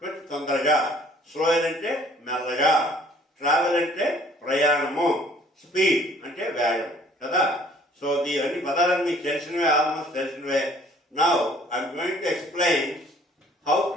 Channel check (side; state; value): both; normal; correlation 0.57